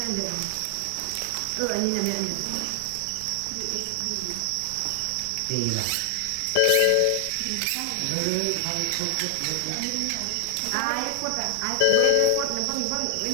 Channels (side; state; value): both; different; correlation 0.00